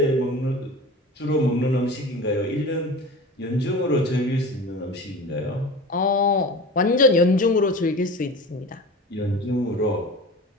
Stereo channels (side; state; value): both; normal; correlation 0.35